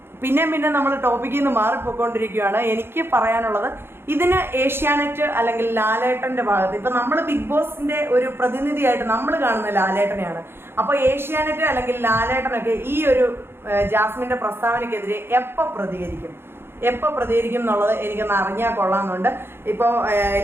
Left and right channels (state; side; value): late; left; 0.11 ms